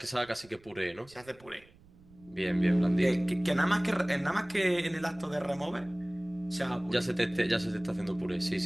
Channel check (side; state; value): right; noise; rumble, 26 dB below the sound